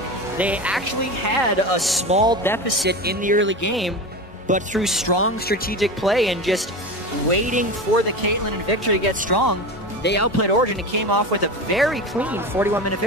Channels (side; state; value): both; normal; correlation 0.26